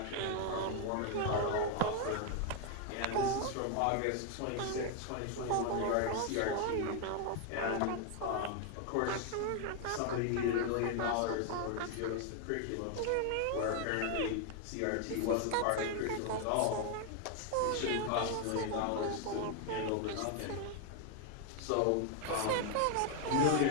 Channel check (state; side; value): different; both; correlation 0.00